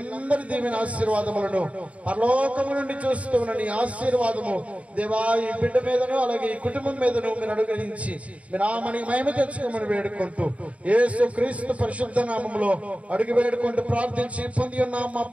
దీవెన ఆశీర్వాదములను పరలోకము నుండి చూస్తూ ఉన్న నీ ఆశీర్వాదము దేవా ఈ బిడ్డ మీదను అలాగే ఈ కుటుంబం మీదను మీరు అనుగ్రహించి మీ నామని మహిమ తెచ్చుకోమని వేడుకుంటూ యేసు క్రీస్తు పరిశుద్ధ నామములో అడుగు వేడుకుంటూ ప్రార్థించి పొంది ఉన్నాం మా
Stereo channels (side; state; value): left; late; 0.066 ms